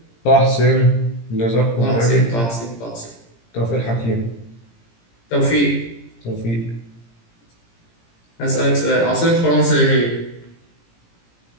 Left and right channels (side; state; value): right; late; 17 ms